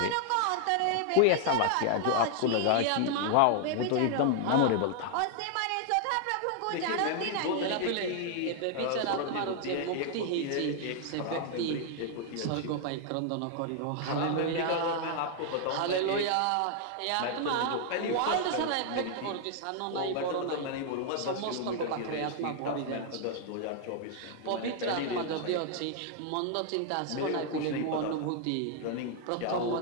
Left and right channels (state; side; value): different; both; correlation 0.00